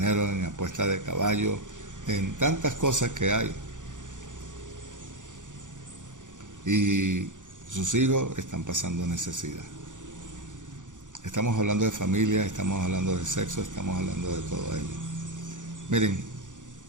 en apuesta de caballo, en tantas cosas que hay. Y sus hijos están pasando necesidad. Estamos hablando de familia, estamos hablando de sexo, estamos hablando de todo ello. Miren,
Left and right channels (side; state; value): left; late; 0.86 ms